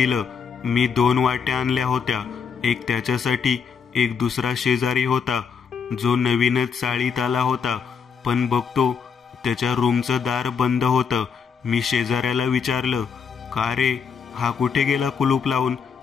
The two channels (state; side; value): quieter; right; 6.3 dB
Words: मी 2 वाट्या आणल्या होत्या, एक त्याच्यासाठी एक दुसरा शेजारी होता जो नवीनच चाळीत आला होता, पण बघतो त्याच्या रूमचं दार बंद होतं. मी शेजाऱ्याला विचारलं, का रे, हा कुठे गेला कुलूप लावून?